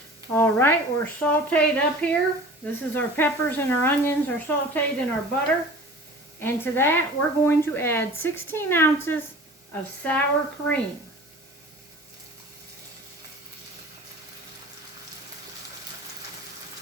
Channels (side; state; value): both; normal; correlation 0.42